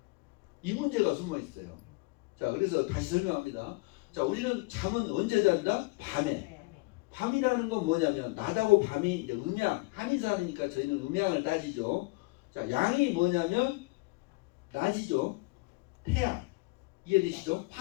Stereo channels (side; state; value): right; quieter; 25.1 dB